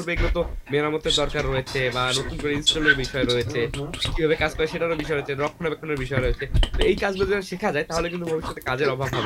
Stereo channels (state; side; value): identical; both; correlation 1.00